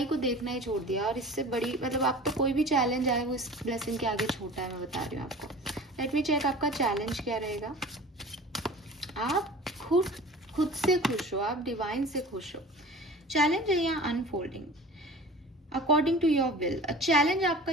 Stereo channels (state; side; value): normal; both; correlation 0.40